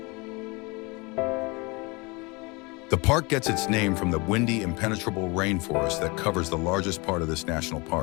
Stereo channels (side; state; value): right; quieter; 27.1 dB